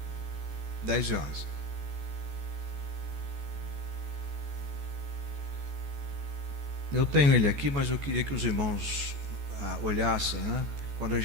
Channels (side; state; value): left; late; 14 ms